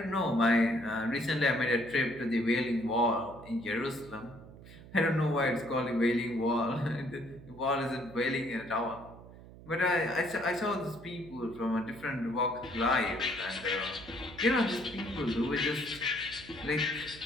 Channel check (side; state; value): right; noise; hum, 18 dB below the sound